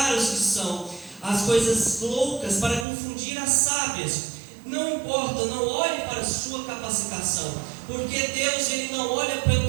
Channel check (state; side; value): drops out; left; at 2.9 s